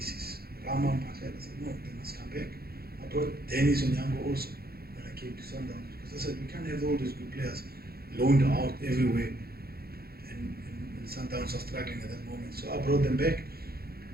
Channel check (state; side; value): late; left; 0.45 ms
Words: Rama Mpahlela, I said, no, they must come back. I brought Dennis Onyango also when I came to Sundowns, because I said, we can't have all these good players loaned out everywhere, and Sundowns are struggling at that moment. So I brought them back.